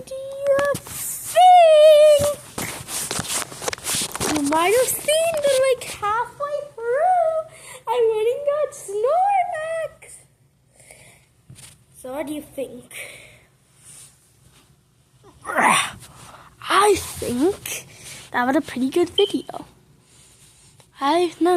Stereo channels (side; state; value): both; identical; correlation 1.00